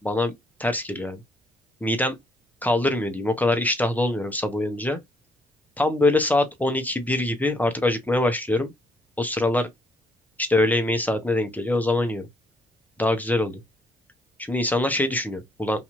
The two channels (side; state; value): both; normal; correlation 0.69